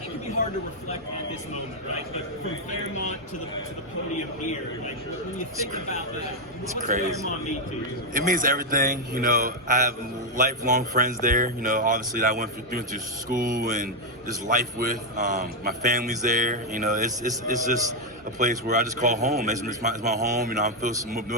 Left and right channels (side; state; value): both; normal; correlation 0.02